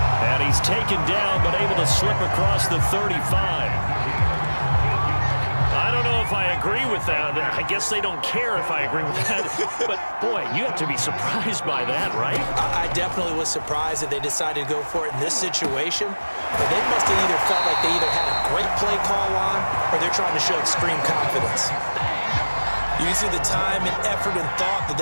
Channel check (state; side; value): inverted; both; correlation -1.00